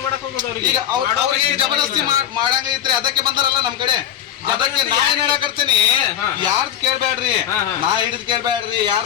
ಮಾಡಕ್ ಹೋಗೋದು ಅವ್ರಿಗೆ? ಈಗ ಅವ್ರಿಗೆ ಜಬರ್ದಸ್ತಿ ಮಾಡಂಗೈತ್ರಿ. ಅದಕ್ಕೆ ಬಂದಾರಲ್ಲ ನಮ್ ಕಡೆ. ಅದಕ್ಕೆ ನಾ ಏನ್ ಹೇಳಕರ್ತೀನಿ, ಯಾರ್ದು ಕೇಳ್ಬೇಡ್ರಿ. ನಾ ಹಿಡಿದ್ ಕೇಳ್ಬೇಡ್ರಿ, ಯಾರ್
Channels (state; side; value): quieter; right; 10.4 dB